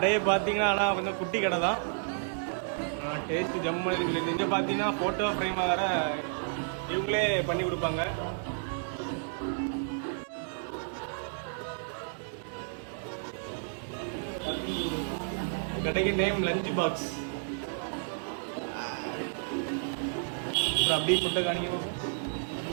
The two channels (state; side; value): silent; left; digital silence